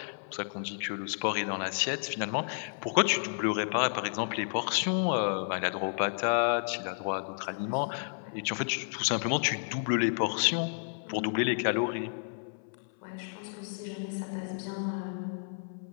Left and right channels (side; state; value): right; silent; 57 dB below the other